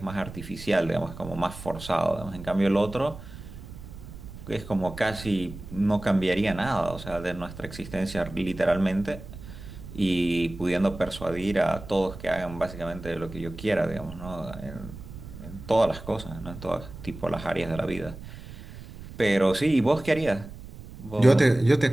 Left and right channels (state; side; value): noise; right; rumble, 14 dB below the sound